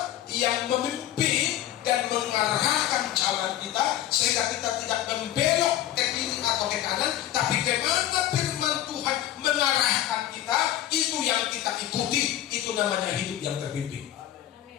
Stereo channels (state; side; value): quieter; right; 12.6 dB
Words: yang memimpin dan mengarahkan jalan kita, sehingga kita tidak membelok ke kiri atau ke kanan, tapi kemana firman Tuhan mengarahkan kita, itu yang kita ikuti. Itu namanya hidup yang terpimpin.